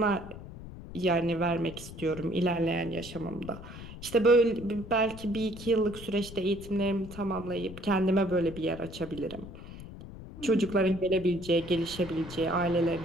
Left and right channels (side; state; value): left; noise; rumble, 13 dB below the sound